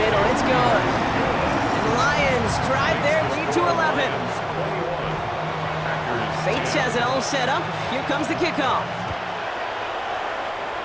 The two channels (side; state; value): both; identical; correlation 1.00